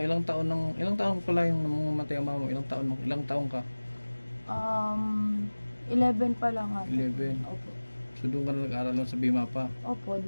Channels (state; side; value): inverted; both; correlation -1.00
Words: pala yung mamatay ang mama mo? Ilang taon ka? 11 pa lang nga. 11. Opo. So doon ka na nag-aaral lang sa Bima pa? Opo,